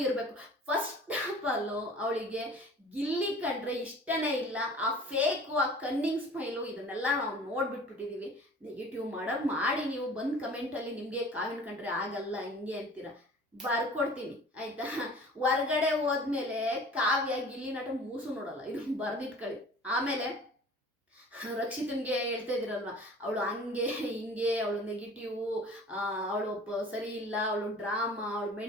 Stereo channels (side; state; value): both; normal; correlation 0.45